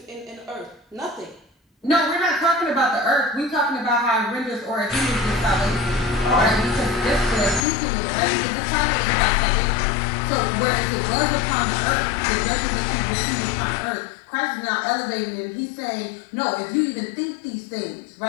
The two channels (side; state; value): right; drops out; at 7.7 s